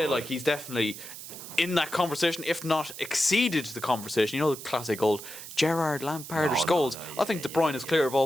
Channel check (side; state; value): right; noise; hiss, 12 dB below the sound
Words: he's definitely in that conversation, if not exceeded the conversation. You know, the classic old Gerrard, Lampard, or Scholes. I think De Bruyne is clear of